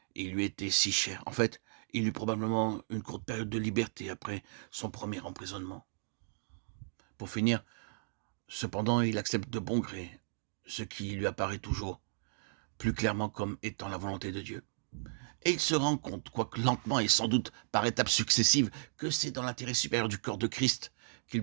Et il lui était si cher. En fait, il eut probablement une courte période de liberté après son premier emprisonnement. Pour finir, cependant, il accepte de bon gré ce qui lui apparaît toujours plus clairement comme étant la volonté de Dieu. Et il se rend compte, quoique lentement et sans doute par étapes successives, que c'est dans l'intérêt supérieur du corps de Christ qu'il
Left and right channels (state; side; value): silent; left; digital silence